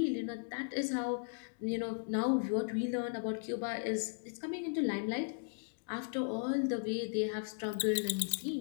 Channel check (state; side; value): silent; right; digital silence